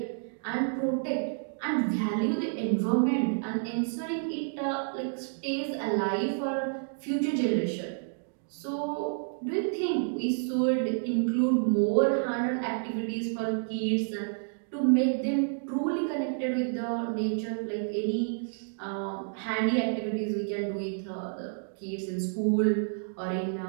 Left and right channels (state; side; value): silent; left; digital silence